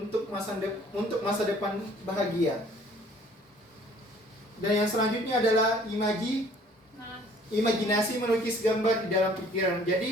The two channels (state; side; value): normal; both; correlation 0.55